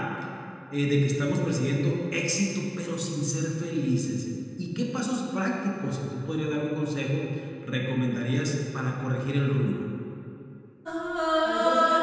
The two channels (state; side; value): identical; both; correlation 1.00